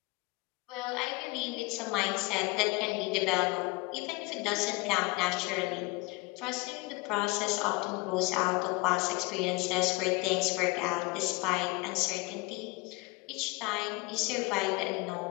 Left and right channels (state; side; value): quieter; right; 23.9 dB